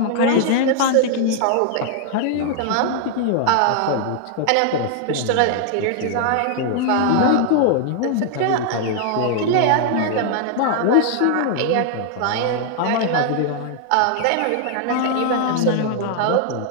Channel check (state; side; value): different; both; correlation 0.00